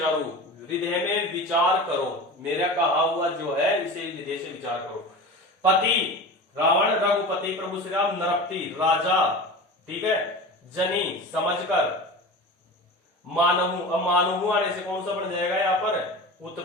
हृदय में विचार करो। मेरा कहा हुआ जो है इसे हृदय से विचार करो। पति, रावण। रघुपति, प्रभु श्री राम। नरपति, राजा, ठीक है। जनी, समझकर। मानहु, अब मानहु आने से कौन सा बन जाएगा यहाँ पर,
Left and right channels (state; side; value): normal; both; correlation 0.32